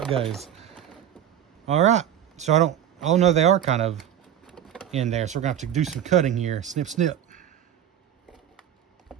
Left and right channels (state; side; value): quieter; left; 10.2 dB